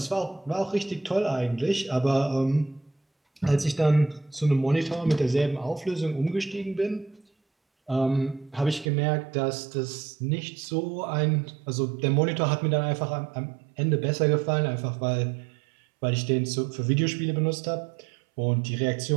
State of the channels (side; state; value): left; drops out; at 8.9 s